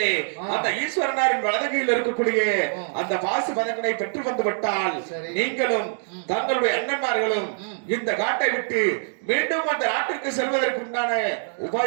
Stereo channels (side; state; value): left; silent; digital silence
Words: அந்த ஈஸ்வரனாரின் வலதுகையில் இருக்கக்கூடிய அந்த பாசு பதங்களை பெற்று வந்து விட்டால் நீங்களும் தங்களுடைய அண்ணன்மார்களும் இந்த காட்டை விட்டு மீண்டும் அந்த நாட்டிற்கு செல்வதற்கு உண்டான